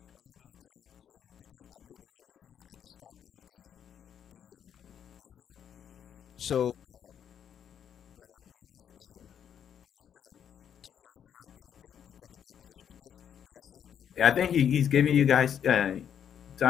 So I think he's giving you guys time.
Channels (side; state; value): right; quieter; 8.7 dB